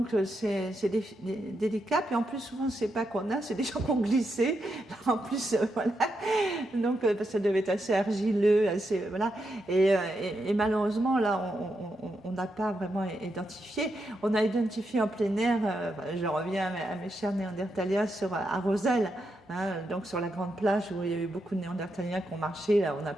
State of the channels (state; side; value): normal; both; correlation 0.84